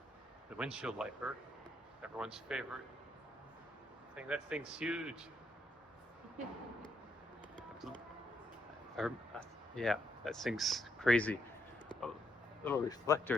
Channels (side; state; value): both; normal; correlation 0.77